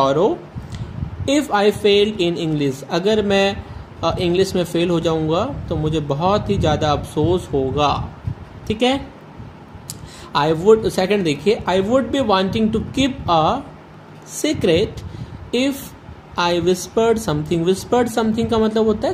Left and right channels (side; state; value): both; identical; correlation 1.00